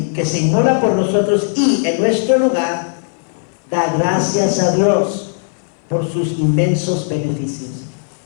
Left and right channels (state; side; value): silent; right; 60 dB below the other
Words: que se inmola por nosotros y en nuestro lugar da gracias a Dios por sus inmensos beneficios.